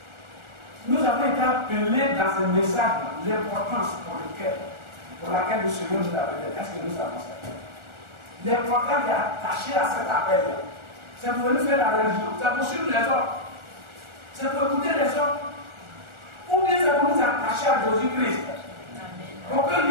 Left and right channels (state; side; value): late; left; 1.4 ms